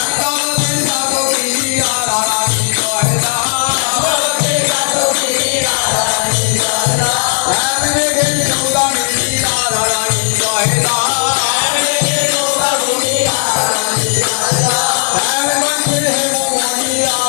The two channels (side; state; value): right; silent; 71 dB below the other